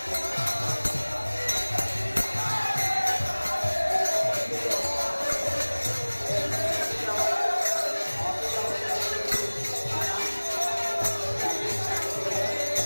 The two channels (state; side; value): inverted; both; correlation -1.00